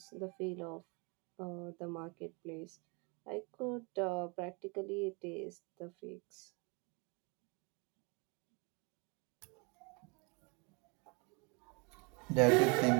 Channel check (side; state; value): left; quieter; 30.9 dB